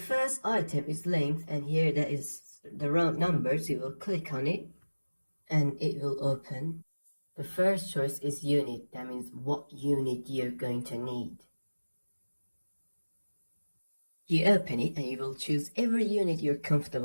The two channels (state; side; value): inverted; both; correlation -1.00